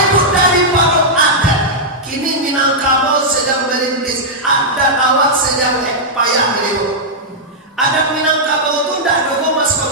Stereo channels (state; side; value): normal; both; correlation -0.08